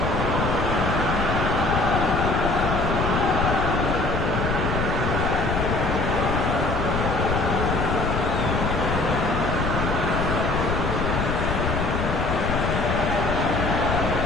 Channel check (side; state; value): left; noise; rumble, 1 dB below the sound